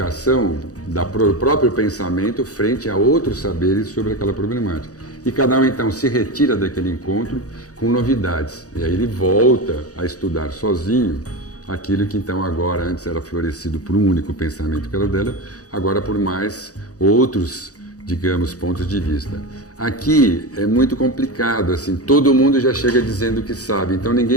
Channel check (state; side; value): late; right; 0.67 ms